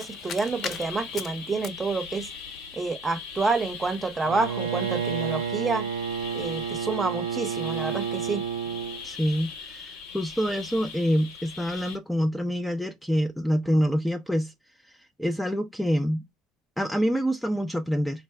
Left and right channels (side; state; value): both; normal; correlation 0.72